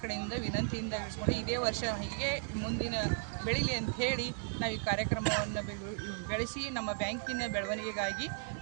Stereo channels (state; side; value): silent; left; 54 dB below the other